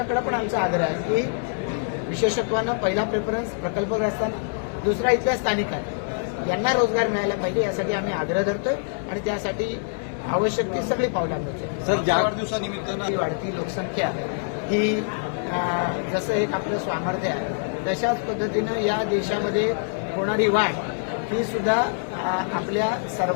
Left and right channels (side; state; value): right; silent; 62 dB below the other